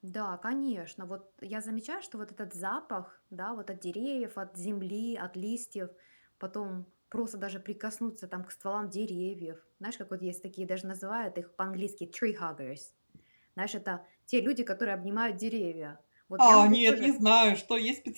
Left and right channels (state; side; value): inverted; both; correlation -1.00